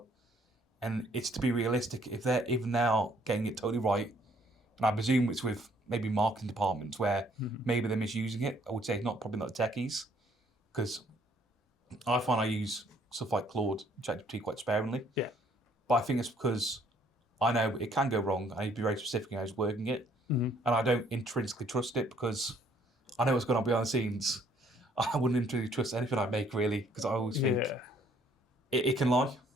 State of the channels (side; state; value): both; normal; correlation 0.64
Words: And it's to be realistic, if they're even now getting it totally right, and I presume it's with maybe marketing departments where maybe they're misusing it. I would say probably not the techies, because I find I use stuff like Claude, ChatGPT quite sparingly. Yeah. But I think it's because I know it can go wrong. I need to be very specific in how I was working it. And I don't intrinsically trust it because I know what's going on behind the scenes. I wouldn't intrinsically trust anything I make, really, because I always think it can lie.